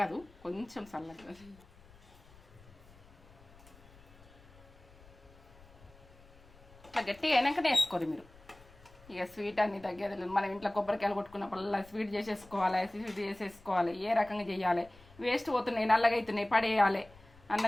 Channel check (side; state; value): left; noise; rumble, 24 dB below the sound